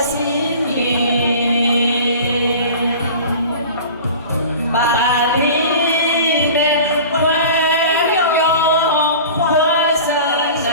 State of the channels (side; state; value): both; inverted; correlation -0.39